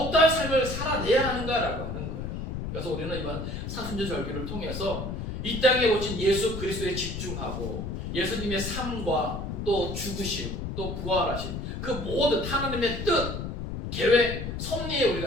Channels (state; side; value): noise; left; rumble, 5 dB below the sound